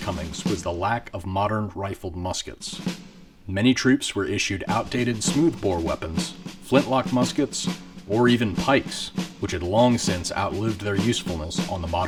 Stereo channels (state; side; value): identical; both; correlation 1.00